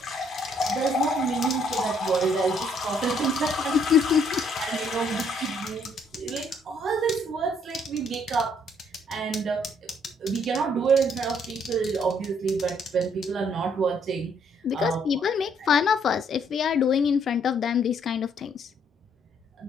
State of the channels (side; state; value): both; normal; correlation 0.67